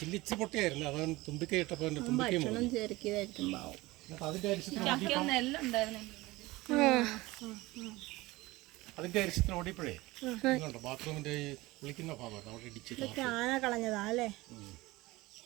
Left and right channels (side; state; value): left; quieter; 20.3 dB